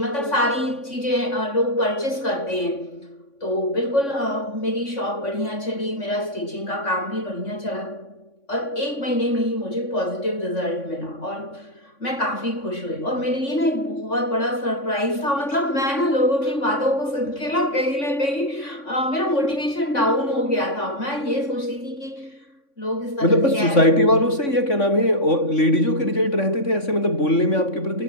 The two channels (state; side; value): late; right; 3.6 ms